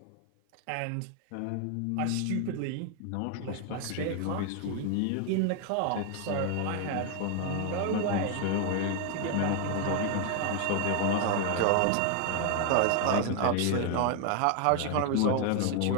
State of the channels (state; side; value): different; both; correlation 0.00